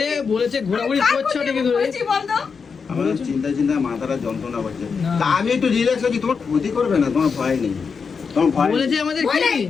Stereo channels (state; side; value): quieter; right; 5.6 dB